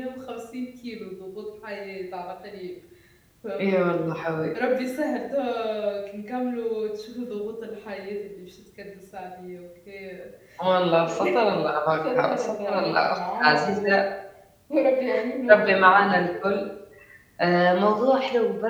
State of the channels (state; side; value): identical; both; correlation 1.00